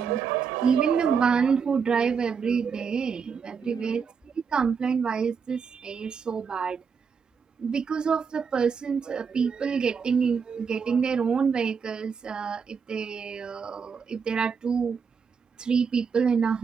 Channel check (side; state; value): left; quieter; 6.1 dB